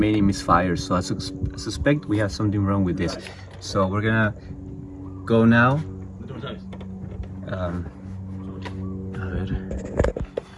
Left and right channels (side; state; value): both; identical; correlation 1.00